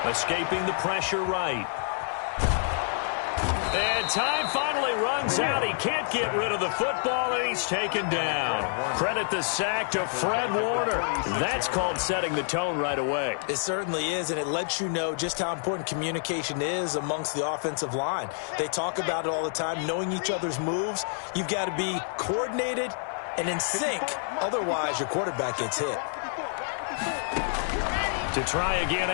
Escaping the pressure right. And time finally runs out. He can't get rid of the football, and he's taken down. Credit the sack to Fred Warner. That's called setting the tone right away. It certainly is, and it lets you know just how important communication is amongst the offensive line. They talk about it all the time, knowing each other's moves. You've got to be coordinated and in sync. Otherwise, your quarterback gets hit. To try again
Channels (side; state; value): right; silent; 59 dB below the other